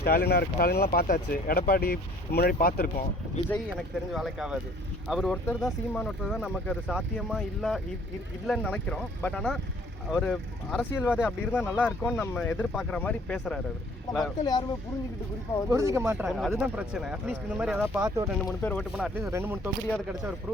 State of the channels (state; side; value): normal; both; correlation 0.56